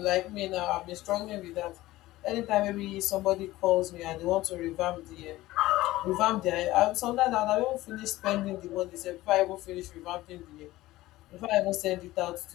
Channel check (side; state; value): right; quieter; 17.2 dB